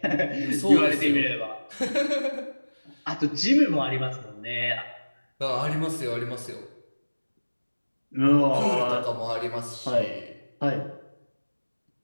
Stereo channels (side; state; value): both; inverted; correlation -1.00